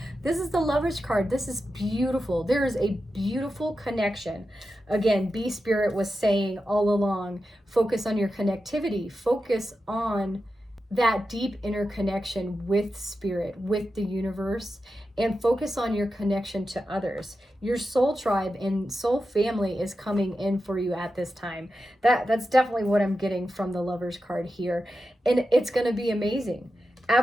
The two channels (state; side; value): normal; both; correlation 0.90